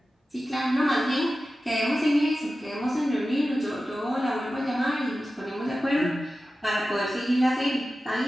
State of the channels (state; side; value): normal; both; correlation 0.94